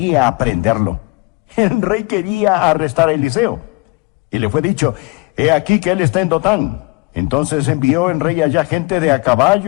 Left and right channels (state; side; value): quieter; right; 28.0 dB